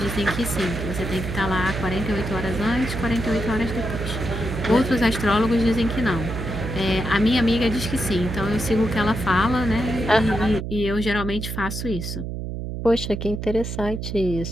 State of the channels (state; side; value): noise; right; hum, 5 dB below the sound